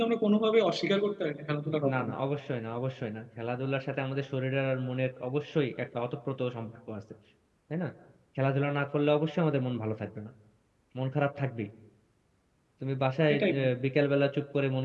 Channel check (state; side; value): identical; both; correlation 1.00